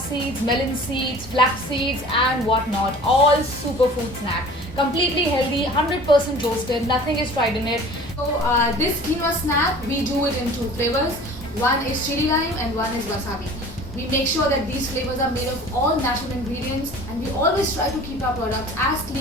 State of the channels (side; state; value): both; normal; correlation 0.44